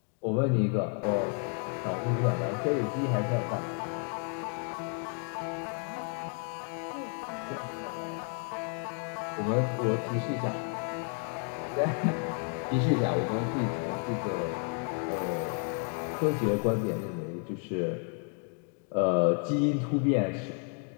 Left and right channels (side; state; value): right; quieter; 38.9 dB